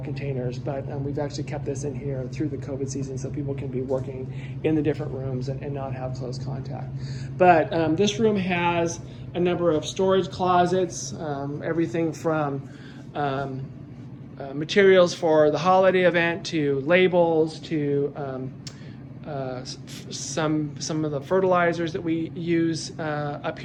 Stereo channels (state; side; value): identical; both; correlation 1.00